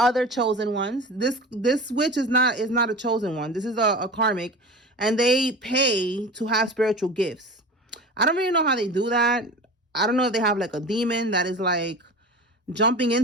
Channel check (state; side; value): normal; both; correlation 0.34